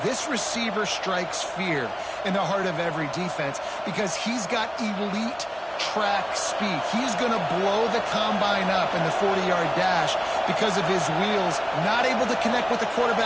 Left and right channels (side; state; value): both; identical; correlation 1.00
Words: This receiver strikes fear in the heart of every defense because he's got elite track speed. He's going to blow the combine up in the 40-yard dash because of his wheels. Not able to connect with the